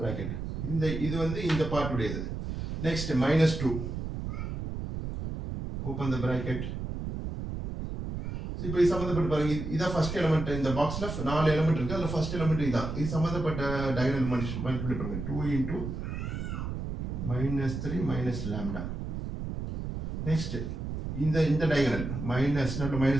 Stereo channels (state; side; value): noise; right; rumble, 5 dB below the sound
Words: இது வந்து இந்த பார்ட் உடையது. Next minus 2 open the bracket. இப்போ இது சம்பந்தப்பட்ட பாருங்க இதான் ஃபர்ஸ்ட் எலிமெண்ட் இந்த பாக்ஸ்ல 4 எலிமெண்ட் இருக்கு அதுல ஃபர்ஸ்ட் எலிமெண்ட் இதான் இது சம்பந்தப்பட்ட டயகனல் மல்டிப்ளை பண்ணுங்க 2 into minus 3 minus lambda. Next இந்த diagonal minus not